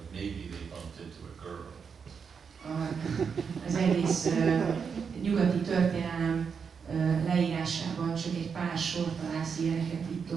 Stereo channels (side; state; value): left; quieter; 6.2 dB